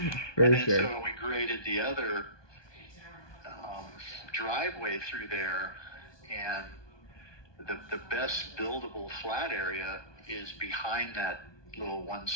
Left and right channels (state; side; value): late; right; 1.2 ms